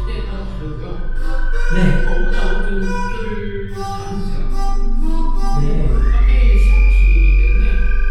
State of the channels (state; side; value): identical; both; correlation 1.00